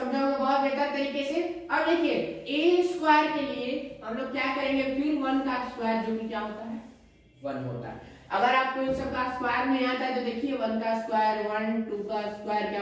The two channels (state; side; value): identical; both; correlation 1.00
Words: होंगे बहुत बेहतर तरीके से। अब देखिए ए स्क्वायर के लिए हम लोग क्या करेंगे? फिर 1 का स्क्वायर जो कि क्या होता है 1 होता है। अगर आपको इन सब का स्क्वायर नहीं आता है तो देखिए 1 का स्क्वायर 1, 2 का स्क्वायर